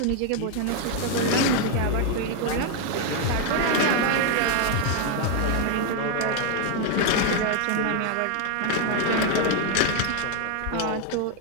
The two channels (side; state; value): both; different; correlation 0.00